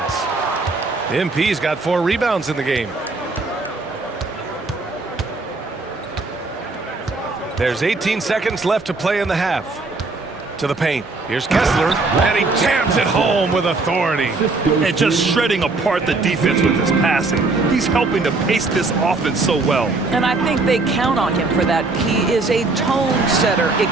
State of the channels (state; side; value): quieter; left; 3.5 dB